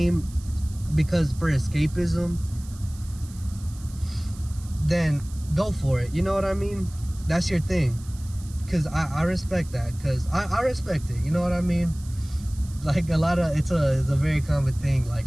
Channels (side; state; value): right; noise; hiss, 21 dB below the sound